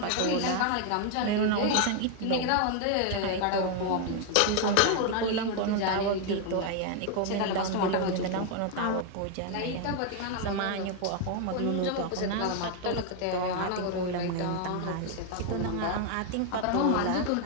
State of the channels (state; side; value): different; both; correlation 0.01